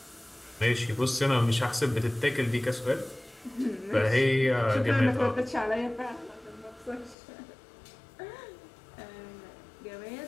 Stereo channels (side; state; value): right; drops out; at 7.2 s